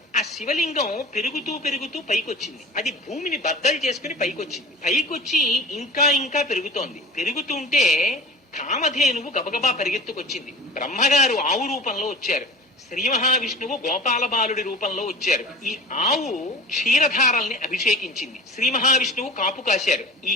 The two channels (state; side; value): normal; both; correlation 0.39